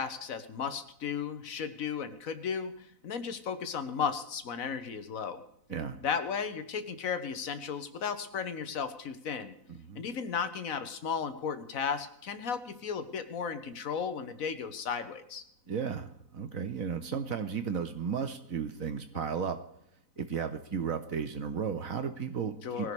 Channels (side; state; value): right; late; 4.0 ms